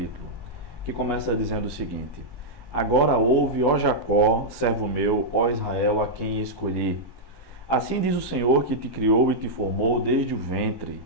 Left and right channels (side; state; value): left; late; 1.1 ms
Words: que começa dizendo o seguinte: Agora ouve, ó Jacó, servo meu, ó Israel, a quem escolhi. Assim diz o Senhor que te criou e te formou desde o ventre,